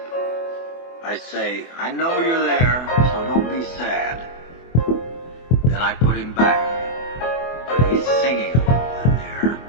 I say, I know you're there, so don't be sad. Then I put him back. But he's singing a little in there.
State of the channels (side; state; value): right; late; 24 ms